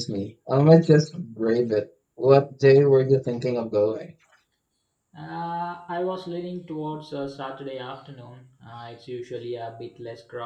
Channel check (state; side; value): identical; both; correlation 1.00